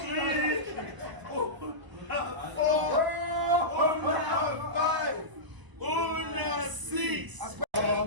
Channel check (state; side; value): late; left; 1.0 ms